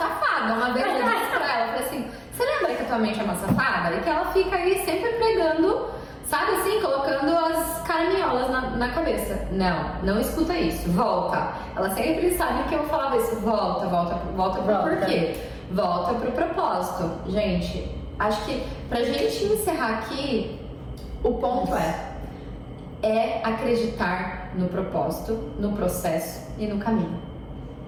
Uma vez eu disse pra ela, eu falei assim, você lembra que a tua mente é uma safada? E que ela fica aí sempre pregando, sabe assim, colocando as caraminholas na cabeça. Não escuta isso, volta. Ela sempre sabe que eu falava isso, volta pro porquê. Volta pro propósito. Gente, acho que pra gente encerrar aqui, o ponto é acreditar no propósito, no processo e no caminho.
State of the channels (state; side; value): identical; both; correlation 1.00